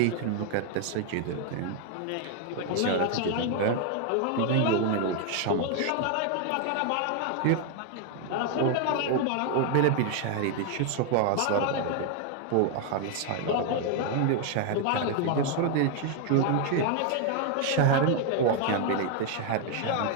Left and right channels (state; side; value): different; both; correlation 0.00